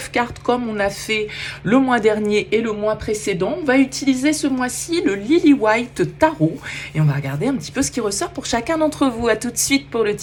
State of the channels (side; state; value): both; identical; correlation 1.00